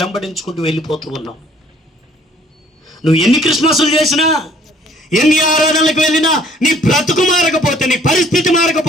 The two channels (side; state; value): both; normal; correlation 0.59